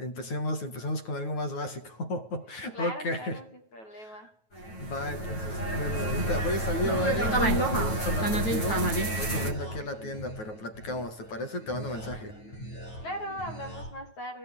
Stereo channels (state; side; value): late; right; 9.2 ms